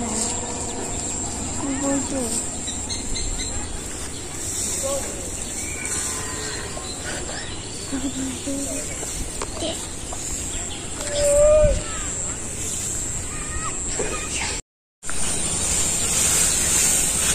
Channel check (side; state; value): both; identical; correlation 1.00